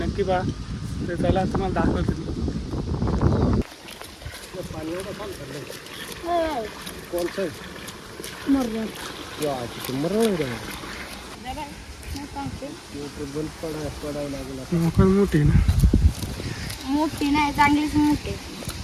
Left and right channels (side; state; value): both; identical; correlation 1.00